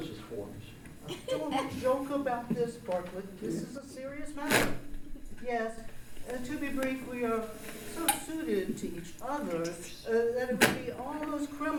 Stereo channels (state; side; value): identical; both; correlation 1.00